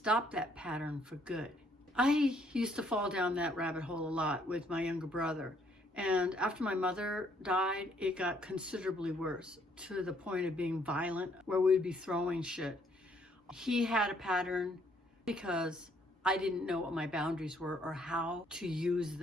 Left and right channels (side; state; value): both; normal; correlation 0.67